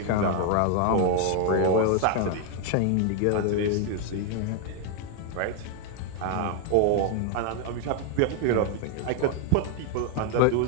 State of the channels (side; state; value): both; different; correlation 0.00